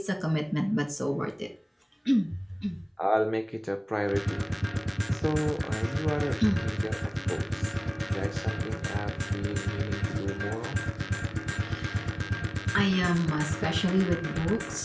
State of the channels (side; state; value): both; identical; correlation 1.00